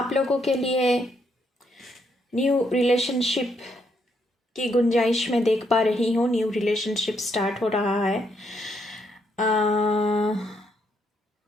लोगों के लिए न्यू रिलेशनशिप की गुंजाइश में देख पा रही हूँ। न्यू रिलेशनशिप स्टार्ट हो रहा है।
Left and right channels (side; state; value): both; normal; correlation 0.75